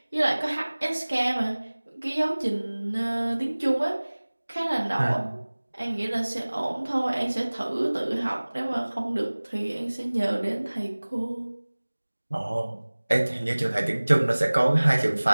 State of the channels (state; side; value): inverted; both; correlation -1.00